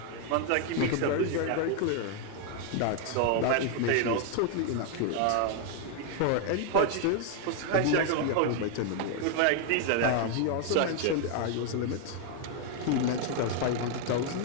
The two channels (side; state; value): both; different; correlation 0.00